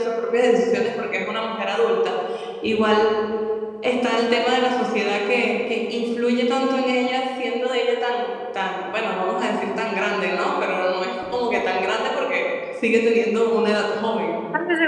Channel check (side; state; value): both; identical; correlation 1.00